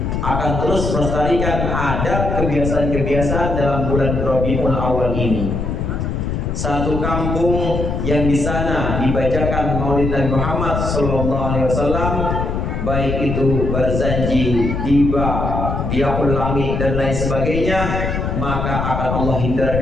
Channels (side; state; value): left; noise; rumble, 2 dB below the sound